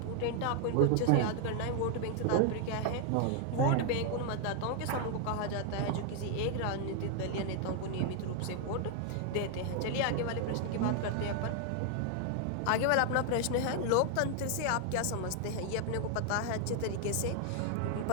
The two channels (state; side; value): different; both; correlation 0.00